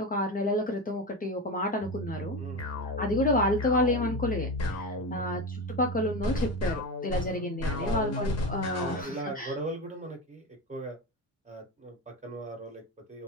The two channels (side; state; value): both; normal; correlation 0.21